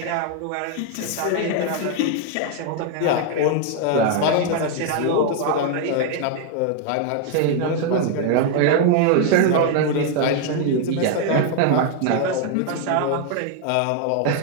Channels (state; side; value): different; both; correlation 0.00